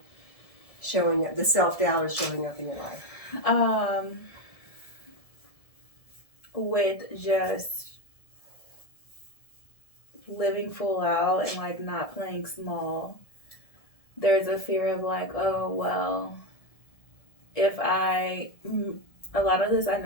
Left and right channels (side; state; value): right; late; 1.7 ms